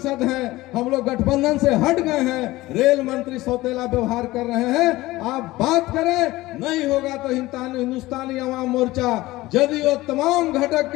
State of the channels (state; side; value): quieter; right; 18.4 dB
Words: हैं, हम लोग गठबंधन से हट गए हैं, रेल मंत्री सौतेला व्यवहार कर रहे हैं। आप बात करें, नहीं होगा तो हिंदुस्तानी अवाम मोर्चा जदयू तमाम घटक